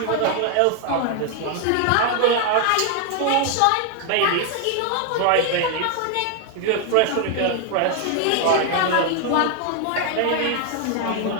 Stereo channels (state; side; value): different; both; correlation 0.00